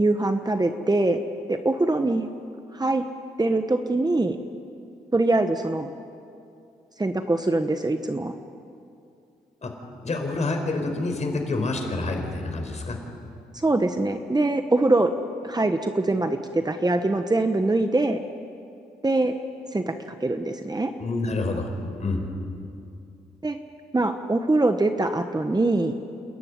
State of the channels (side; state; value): both; normal; correlation 0.85